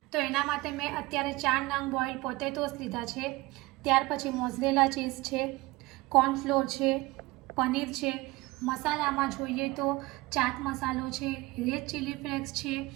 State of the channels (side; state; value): left; quieter; 21.5 dB